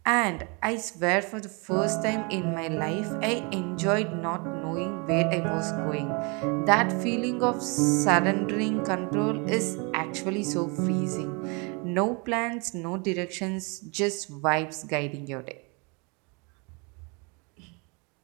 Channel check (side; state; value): left; quieter; 31.4 dB